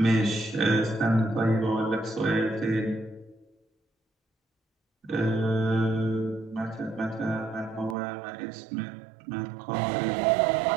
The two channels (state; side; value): drops out; left; at 8.0 s